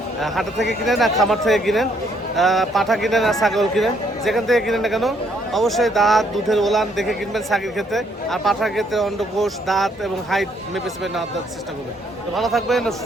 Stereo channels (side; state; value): both; normal; correlation 0.69